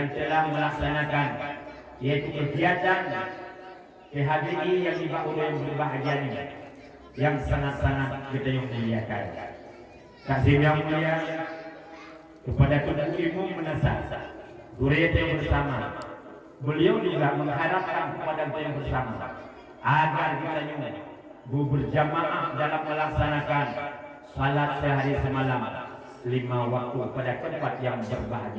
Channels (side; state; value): both; identical; correlation 1.00